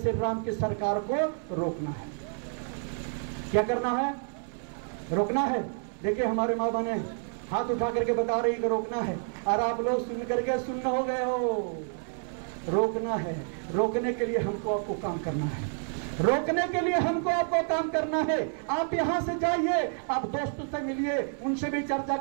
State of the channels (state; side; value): silent; left; 58 dB below the other